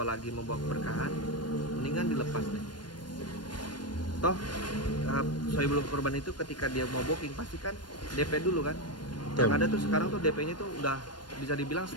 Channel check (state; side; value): late; right; 0.71 ms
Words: membawa keberkahan, mendingan dilepas deh. Toh Saiful Kurban itu ketika dia mau booking pasti kan DP dulu kan. Yang ada tuh sekarang tuh DP-nya tuh udah bisa dibilang